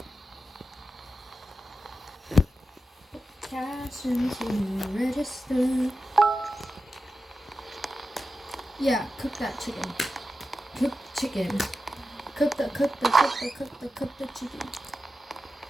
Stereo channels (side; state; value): both; normal; correlation 0.92